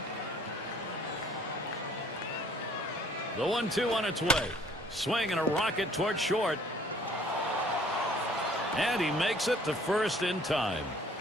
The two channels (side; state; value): both; normal; correlation 0.57